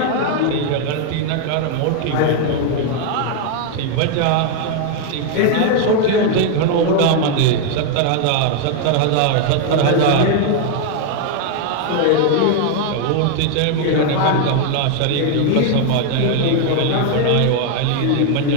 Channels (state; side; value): different; both; correlation 0.00